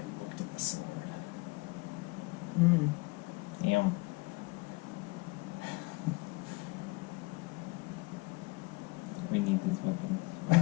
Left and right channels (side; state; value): right; quieter; 24.5 dB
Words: looked at the sword. Mm. Damn. We need these weapons.